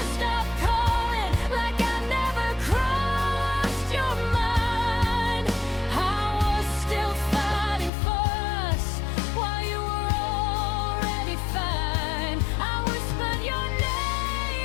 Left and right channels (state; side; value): drops out; right; at 7.9 s